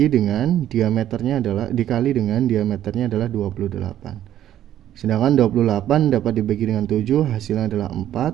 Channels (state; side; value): quieter; left; 11.7 dB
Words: dengan diameternya adalah dikali dengan diameternya adalah 28. Sedangkan 28 dapat dibagi dengan 7, hasilnya adalah 4,